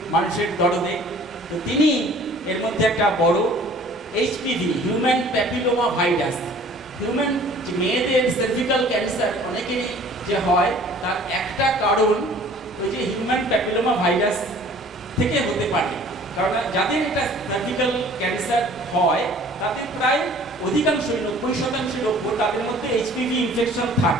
মানুষের দরদে। তো তিনি এর মধ্যে একটা বড় HPV, human papilloma virus, human যে মেয়েদের সার্ভিক্যাল ক্যান্সার অনেকেরই যে হয়, তার একটা কারণ ওই যে হিউম্যান প্যাপিলোমা ভাইরাস থেকে হতে পারে। কারণ যাদের এটা সার্ভিক্যাল ক্যান্সার হয় তাদের প্রায় অধিকাংশই 90% লোক তাদের মধ্যে এইচপিভি ইনফেকশন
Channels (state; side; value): normal; both; correlation 0.51